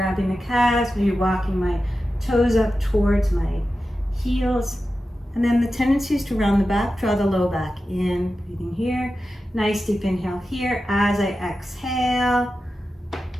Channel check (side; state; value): both; normal; correlation 0.92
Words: the calves, maybe walking my toes up towards my heels. And then the tendency is to round the back, draw the low back in, breathing here. Nice deep inhale here. As I exhale, I'm